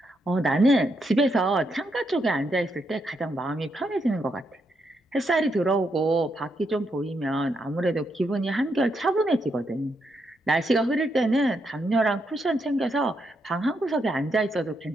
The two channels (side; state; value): both; normal; correlation 0.80